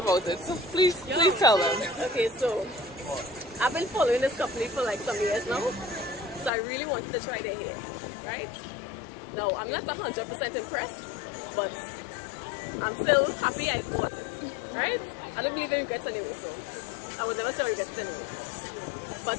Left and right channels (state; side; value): drops out; right; at 6.5 s